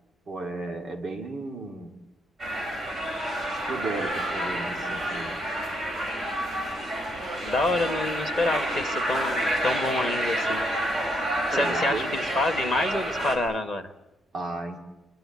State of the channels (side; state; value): both; normal; correlation 0.74